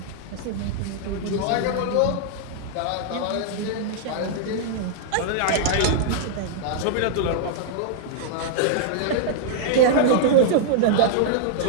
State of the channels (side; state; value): both; different; correlation -0.01